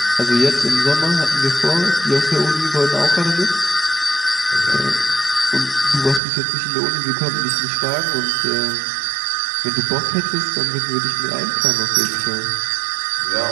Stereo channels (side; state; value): left; drops out; at 6.2 s